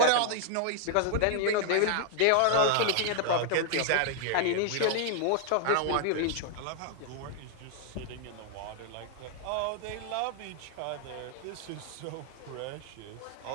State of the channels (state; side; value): different; both; correlation 0.00